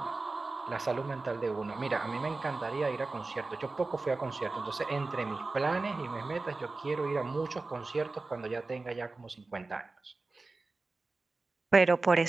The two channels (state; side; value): quieter; left; 3.5 dB